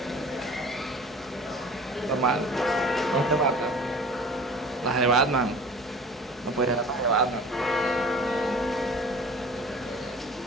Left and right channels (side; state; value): both; normal; correlation 0.43